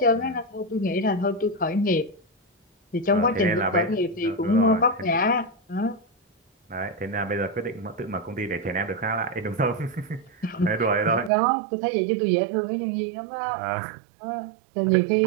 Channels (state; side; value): drops out; left; at 11.3 s